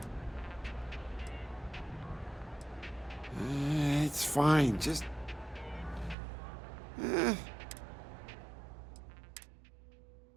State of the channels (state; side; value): drops out; left; at 6.2 s